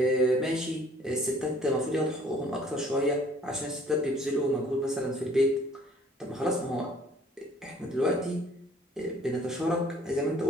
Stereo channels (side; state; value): both; normal; correlation 0.56